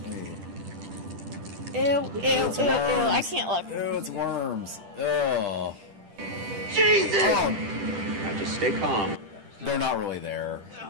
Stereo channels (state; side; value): late; left; 10 ms